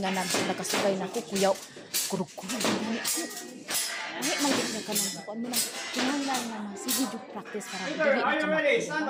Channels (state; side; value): identical; both; correlation 1.00